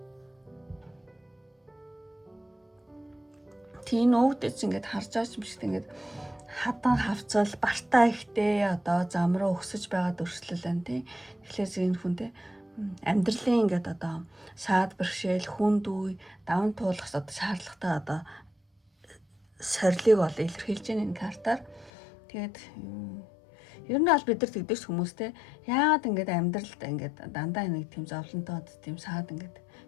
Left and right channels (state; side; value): drops out; right; at 21.9 s